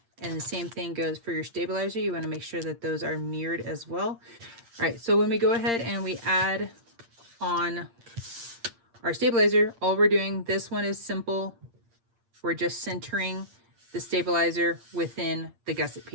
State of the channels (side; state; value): left; late; 8.7 ms